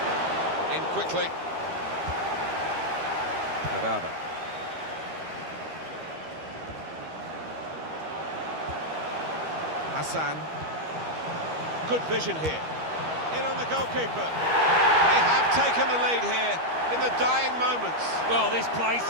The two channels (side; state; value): left; late; 13 ms